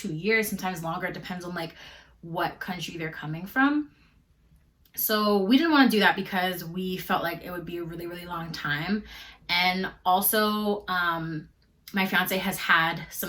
years, sometimes longer. It depends on what country they're coming from. So we didn't want to do that because we felt like it would be a really, really long time. And also, my fiance has had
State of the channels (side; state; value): both; identical; correlation 1.00